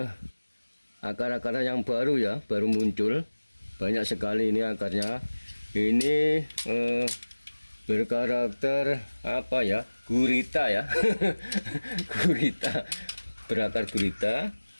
akar-akar yang baru ya, baru muncul banyak sekali ini akarnya. Ini berkarakter apa ya, gurita ya. Gurita, berakar gurita.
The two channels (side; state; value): both; inverted; correlation -1.00